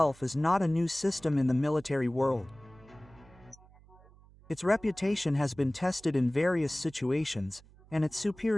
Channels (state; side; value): noise; right; hum, 25 dB below the sound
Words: is not a new system in the military world. Its reputation has been tested in various situations, and its